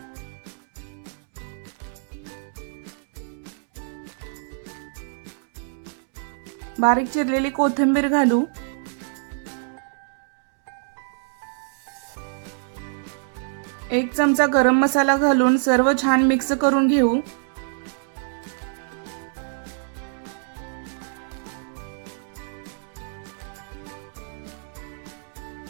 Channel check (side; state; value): left; silent; digital silence